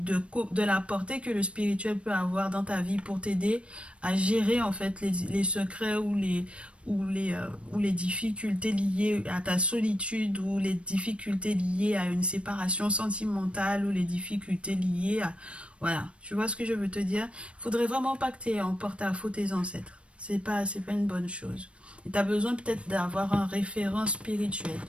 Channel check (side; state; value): left; late; 0.060 ms